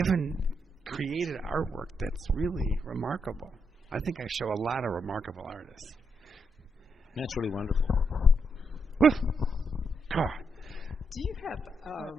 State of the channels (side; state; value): both; normal; correlation 0.79